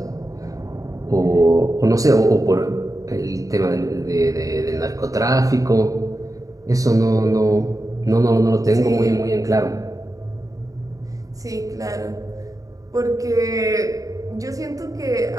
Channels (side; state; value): left; late; 0.16 ms